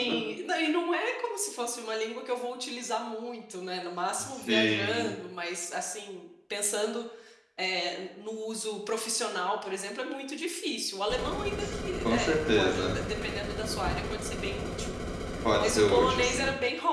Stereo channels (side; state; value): both; identical; correlation 1.00